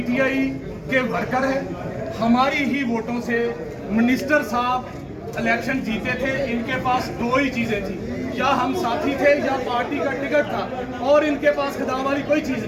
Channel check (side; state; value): both; identical; correlation 1.00